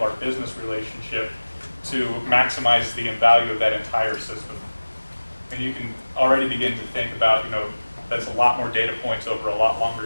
our business relationship to maximize the value of that entire system. And you can already begin to think about, that's a lot more data points over a lot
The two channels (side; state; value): both; inverted; correlation -1.00